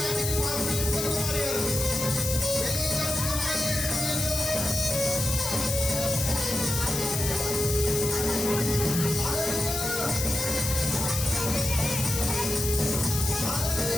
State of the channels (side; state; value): left; noise; hiss, 2 dB below the sound